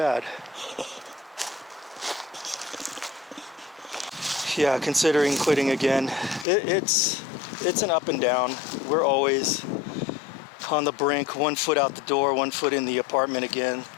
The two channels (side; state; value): right; drops out; at 6.5 s